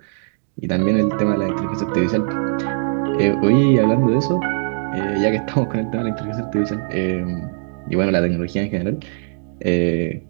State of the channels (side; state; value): left; silent; digital silence